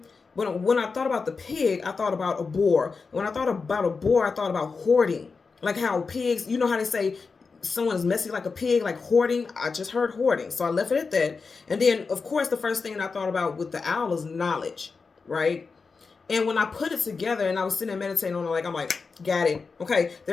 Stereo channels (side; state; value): right; quieter; 4.7 dB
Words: But when I thought about the pig, I thought about a boar. When I thought about a boar, I thought about hoarding. Like how pigs, you know how they say someone is messy like a pig, like hoarding. I just heard hoarding. So I left it at that. And then, of course, the first thing I thought about with the owl is knowledge, right? And when I put it together and I was sitting there meditating on it, I'm like, got it. Okay,